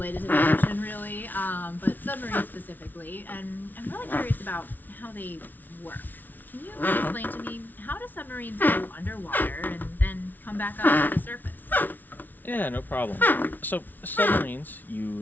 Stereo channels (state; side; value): late; right; 0.084 ms